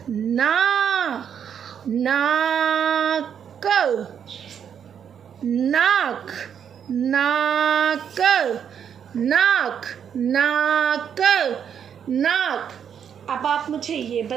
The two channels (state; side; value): quieter; left; 8.2 dB